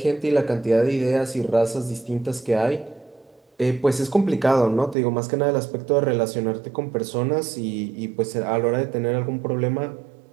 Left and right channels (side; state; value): left; drops out; at 5.0 s